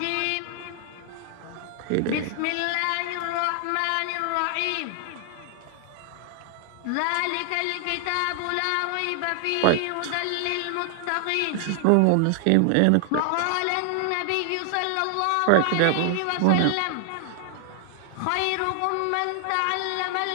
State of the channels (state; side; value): different; both; correlation 0.00